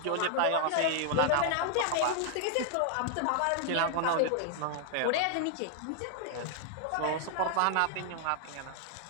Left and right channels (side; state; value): both; different; correlation 0.00